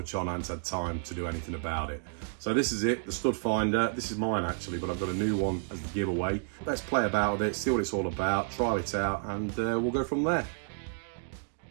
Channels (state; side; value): silent; left; digital silence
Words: on, I hadn't had time to do anything about it. So this is it, the stud finder. This is mine actually, but I've got a new one as the giveaway. Let's play about with it, see what it's all about, try it out, and we'll go from there.